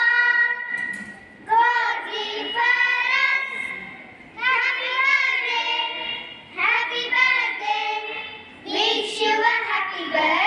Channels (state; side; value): identical; both; correlation 1.00